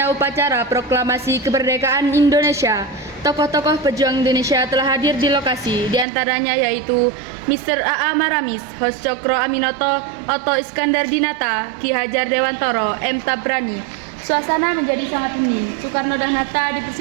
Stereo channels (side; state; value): left; drops out; at 6.1 s